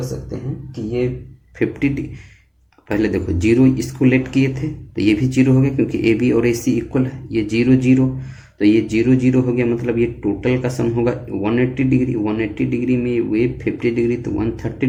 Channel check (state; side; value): identical; both; correlation 1.00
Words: सकते हैं कि ये 50 पहले देखो 0 इसको लेट किए थे तो ये भी 0 हो गया क्योंकि AB और AC इक्वल है। ये 0 0 तो ये 0 0 हो गया मतलब ये टोटल का सम होगा 180 डिग्री। 180 डिग्री में वे 50 डिग्री तो